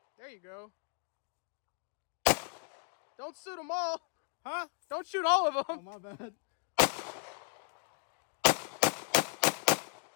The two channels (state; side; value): silent; right; digital silence